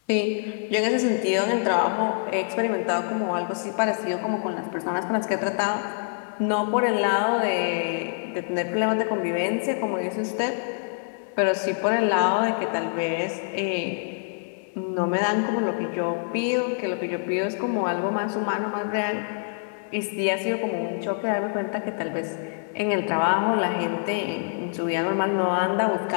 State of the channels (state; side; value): silent; right; 61 dB below the other